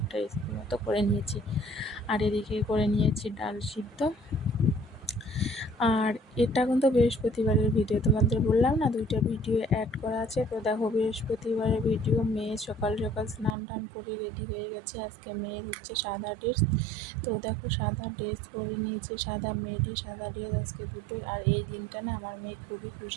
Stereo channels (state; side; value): drops out; left; at 13.6 s